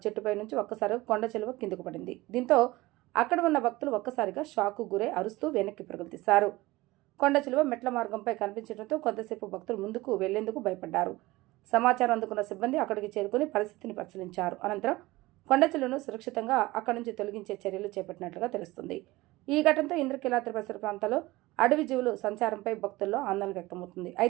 చెట్టుపై నుంచి ఒక్కసారిగా కొండ చిలువ కిందకు పడింది. దీంతో అక్కడ ఉన్న భక్తులు ఒక్కసారిగా షాకు గురై అరుస్తూ వెనక్కి పరుగులు తీశారు. కొండ చిలువ మెట్ల మార్గంపై కనిపించడంతో కొంతసేపు భక్తులు ముందుకు వెళ్లేందుకు భయపడ్డారు. సమాచారం అందుకున్న సిబ్బంది అక్కడికి చేరుకుని పరిస్థితిని పరిశీలించారు. అనంతరం కొండ చిలువను సురక్షితంగా అక్కడి నుంచి తొలగించే చర్యలు చేపట్టినట్లుగా తెలుస్తుంది. ఈ ఘటనతో ఇంద్రకీలాద్రి పరిసర ప్రాంతాల్లో అడవి జీవులు సంచారంపై భక్తుల్లో ఆందోళన వ్యక్తమవుతుంది.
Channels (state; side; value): quieter; left; 19.7 dB